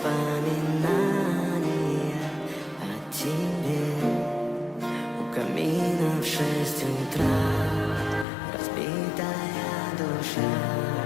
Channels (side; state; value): right; drops out; at 8.2 s